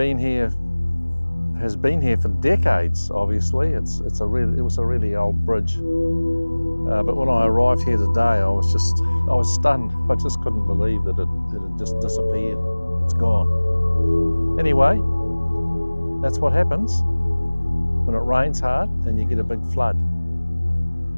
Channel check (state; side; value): inverted; both; correlation -1.00